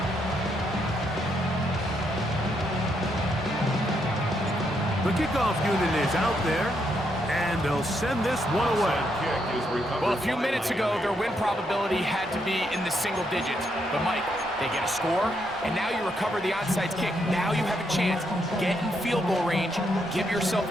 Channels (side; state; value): both; normal; correlation 0.77